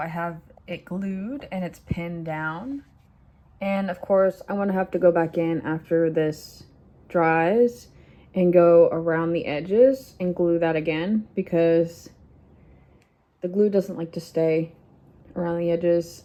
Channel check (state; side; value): identical; both; correlation 1.00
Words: have it glued and it's pinned down. And of course, I'm gonna have to go back in after this dries and go around the edges and glue that again because the glue doesn't like to stay around the edges.